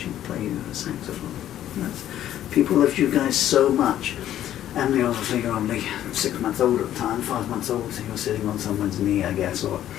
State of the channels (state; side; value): quieter; right; 11.9 dB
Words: play the saxophone. People loved you guys so much. And the obviously you're only 6 months old at the time, 5 months old, so you're sitting on someone's knee, I guess, or